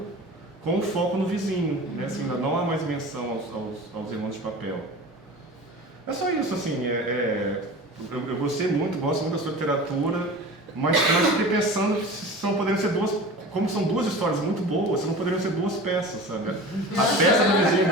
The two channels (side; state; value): both; normal; correlation 0.36